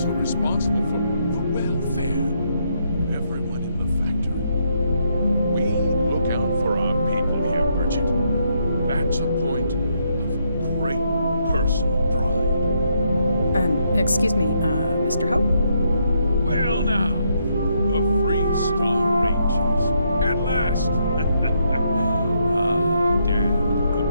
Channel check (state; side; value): inverted; both; correlation -0.76